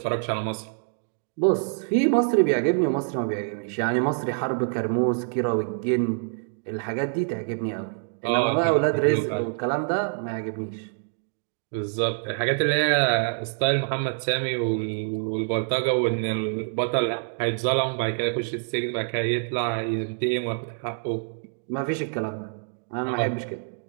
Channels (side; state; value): left; silent; 61 dB below the other